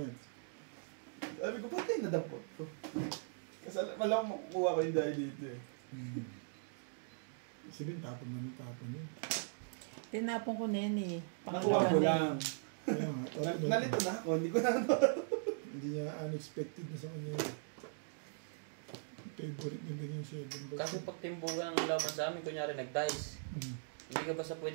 Sabi ko, patay na dampot ko. Kasi malang makukuha ko yung dahil dito eh. Sabihin, tapon mo ng tapon yun. Tinapon ko na yan eh. Nakuha ko lang. Kaya nga, tapon Nalito na ako, hindi ko na ano. Hindi niya unexpected na sa kanya yun. Favorite niya din yung 7 kasi pag timbugan ang laman sa amin, kunyari nag-dice. Hmm. Hindi ka basta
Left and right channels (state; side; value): silent; left; digital silence